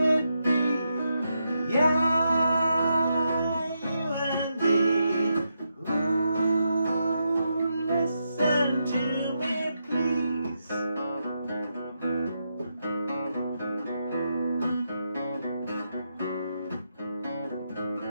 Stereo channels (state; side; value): inverted; both; correlation -0.83